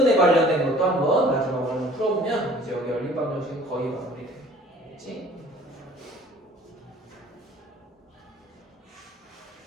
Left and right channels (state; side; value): normal; both; correlation 0.51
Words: 관련된 것도 한번 마지막으로 풀어보면 이제 여기 연립방정식은 거의 마무리되겠지?